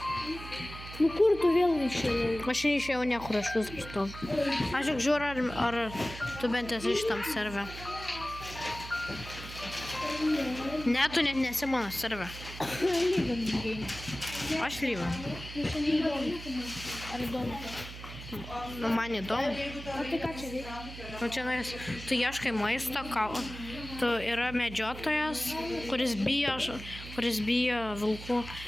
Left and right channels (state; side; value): noise; right; hum, 12 dB below the sound